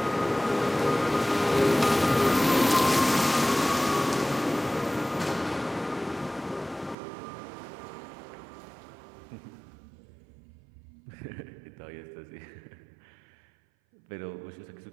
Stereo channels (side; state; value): left; drops out; at 7.0 s